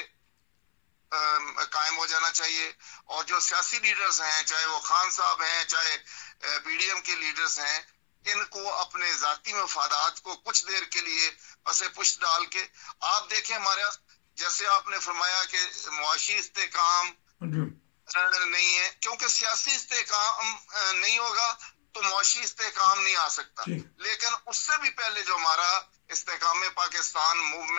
قائم ہو جانا چاہیے اور جو سیاسی لیڈرز ہیں چاہے وہ خان صاحب ہیں چاہے پی ڈی ایم کے لیڈرز ہیں ان کو اپنے ذاتی مفادات کو کچھ دیر کے لیے پسے پشت ڈال کے آپ دیکھیں ہمارا جیسے آپ نے فرمایا کہ معاشی استحکام نہیں ہے، کیونکہ سیاسی استحکام نہیں ہوگا تو معاشی استحکام نہیں آ سکتا. لیکن اس سے بھی پہلے جو ہمارا استحکام پاکستان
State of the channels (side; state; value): right; silent; 59 dB below the other